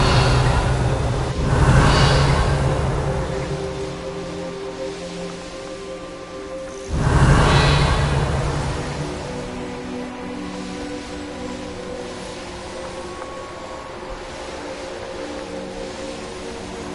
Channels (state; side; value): identical; both; correlation 1.00